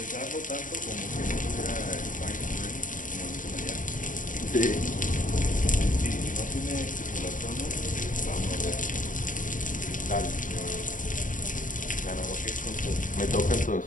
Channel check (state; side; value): late; right; 0.38 ms